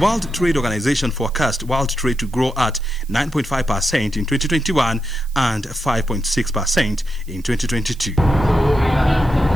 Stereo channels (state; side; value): noise; right; hiss, 25 dB below the sound